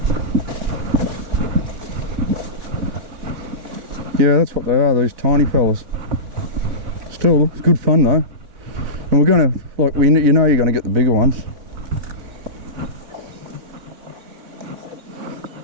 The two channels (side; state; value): left; late; 4.0 ms